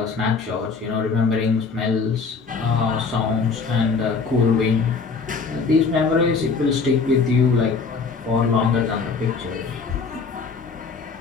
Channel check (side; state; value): right; quieter; 4.9 dB